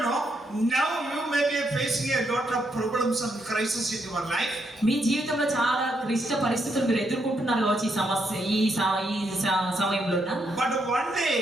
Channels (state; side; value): normal; both; correlation 0.78